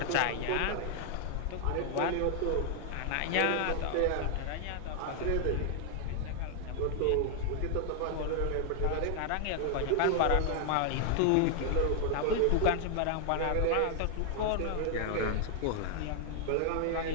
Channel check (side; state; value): both; different; correlation 0.00